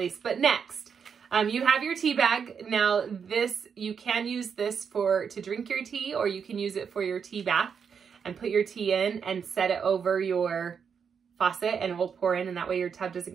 but next, you have your tea bag. Now this, you can use this to drink your tea, or you can use it for your tea bath and put your tea in and set it over your faucet and it will pour in, and that way your tub doesn't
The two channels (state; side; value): quieter; left; 6.7 dB